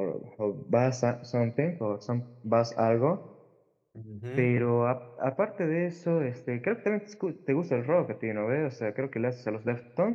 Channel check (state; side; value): identical; both; correlation 1.00